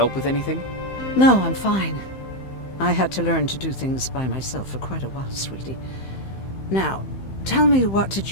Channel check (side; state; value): right; late; 15 ms